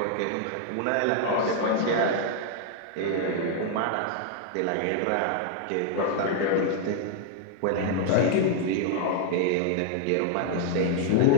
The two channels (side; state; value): both; different; correlation 0.00